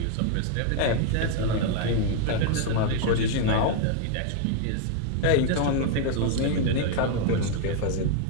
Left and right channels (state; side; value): different; both; correlation 0.00